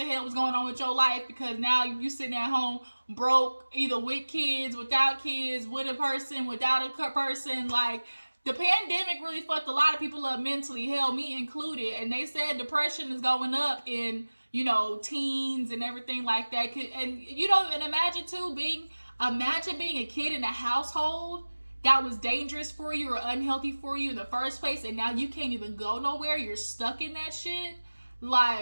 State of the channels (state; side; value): inverted; both; correlation -1.00